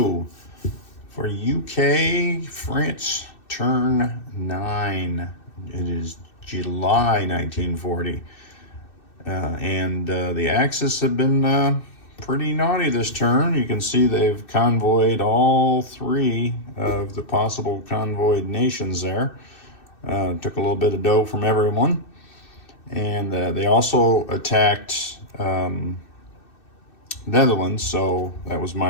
for UK France Turn 9. It is July 1940. And the Axis have been pretty naughty this turn. You can see they've convoyed all three of the possible convoyed nations there. Took a little bit of dough from everyone. And they also attacked Netherlands, so that was my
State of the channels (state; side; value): late; right; 2.6 ms